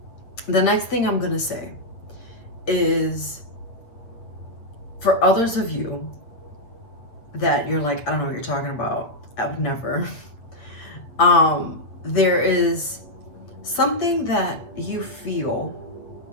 The next thing I'm going to say is for others of you that you're like, I don't know what you're talking about. I would never. There is something that you feel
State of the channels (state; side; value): late; right; 8.5 ms